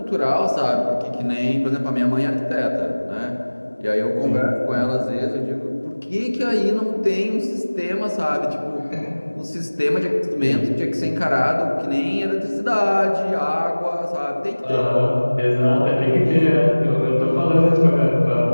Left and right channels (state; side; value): inverted; both; correlation -1.00